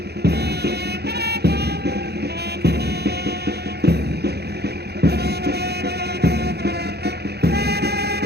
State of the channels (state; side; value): late; left; 0.48 ms